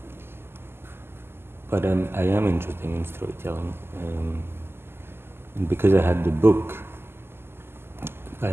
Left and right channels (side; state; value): left; late; 0.12 ms